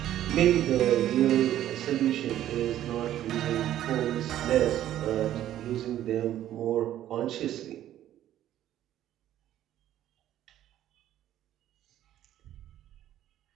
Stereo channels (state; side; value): quieter; left; 12.3 dB